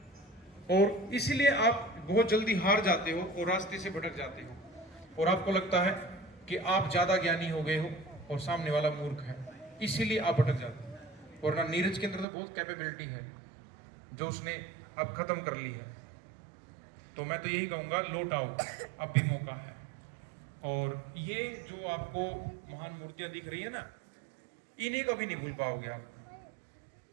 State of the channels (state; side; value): drops out; left; at 12.2 s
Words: और इसलिए आप बहुत जल्दी हार जाते हो और रास्ते से भटक जाते हो और आपको लगता है कि आप ज्यादा ज्ञानी हो गए हो और सामने वाला मूर्ख है, इसीलिए आप भटक जाते हो। और ना नीरज के अंदर तो बहुत कैपेबिलिटी है जो उसने अब खत्म कर ली है। तो मैं तो यही कहूंगा, लौट आओ, अब भी मौका है। और ये जो आपको महान मूर्तियां दिख रही है ना, इन्हें कभी नहीं भूल पाओगे आप,